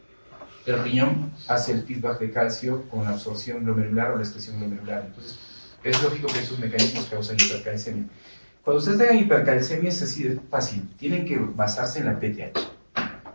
El riñón hace el feedback de calcio con la absorción glomerular o la excreción glomerular. Entonces, es lógico que esos mecanismos causan hipercalcemia. Cuando ustedes tengan hipercalcemia es así de fácil. Tienen que basarse en la PTH.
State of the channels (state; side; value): inverted; both; correlation -1.00